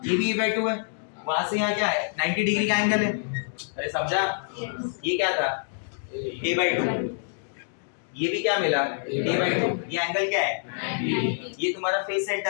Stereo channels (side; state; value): right; silent; digital silence